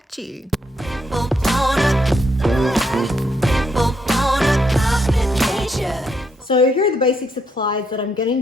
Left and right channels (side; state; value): both; normal; correlation 0.76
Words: you. So here are the basic supplies that I'm